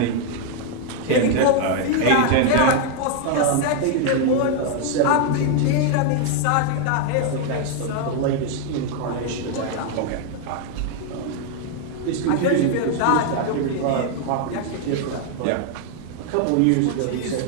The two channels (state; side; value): different; both; correlation 0.00